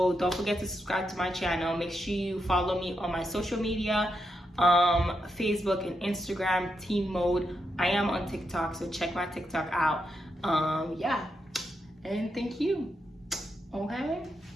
don't forget to subscribe to my channel. Make sure you follow me on my social media, Facebook and Instagram, Teen Maude. I am on TikTok, so check my TikTok out. Yeah, and thank you. Okay.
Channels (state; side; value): normal; both; correlation 0.83